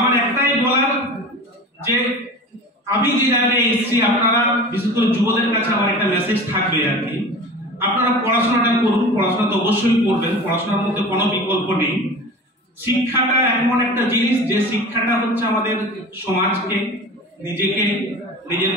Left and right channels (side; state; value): both; normal; correlation 0.35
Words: একটাই বলার যে আমি যে জায়গায় এসেছি, আপনারা বিশেষ করে যুবদের কাছে আমার একটা মেসেজ থাকবে আর কি, আপনারা পড়াশোনাটা করুন, পড়াশোনা তো অবশ্যই করবেন, পড়াশোনার মধ্যে কোনো বিকল্প নেই। শিক্ষাটা এমন একটা জিনিস যে শিক্ষাটা হচ্ছে আমাদের সমাজকে, নিজেকে, নিজের